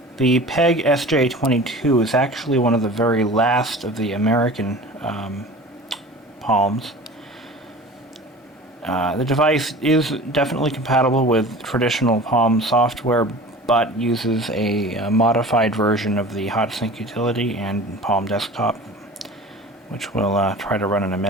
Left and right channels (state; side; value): normal; both; correlation 0.39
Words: The PEG SJ22 is actually one of the very last of the American Palms. The device is definitely compatible with traditional Palm software, but uses a modified version of the HotSync utility and Palm Desktop, which we'll try to run in a